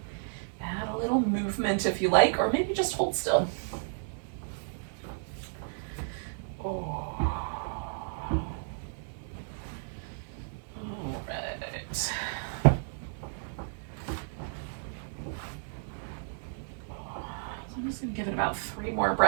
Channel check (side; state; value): left; silent; digital silence